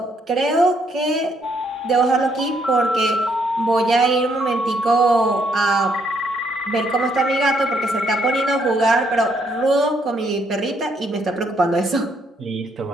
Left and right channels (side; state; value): both; normal; correlation 0.72